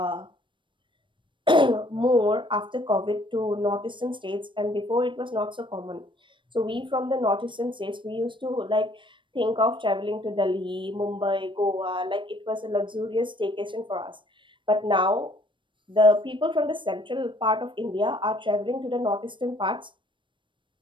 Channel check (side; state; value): left; late; 0.24 ms